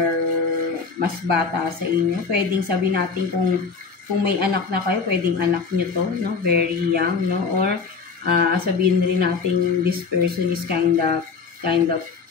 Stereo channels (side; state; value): right; quieter; 5.0 dB